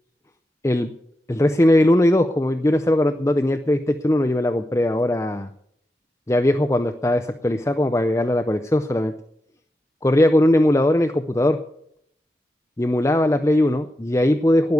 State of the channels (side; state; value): both; normal; correlation 0.87